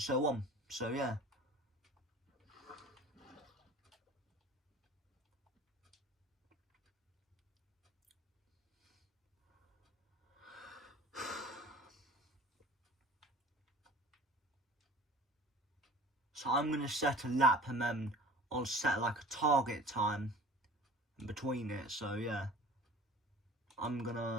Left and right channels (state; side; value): normal; both; correlation 0.44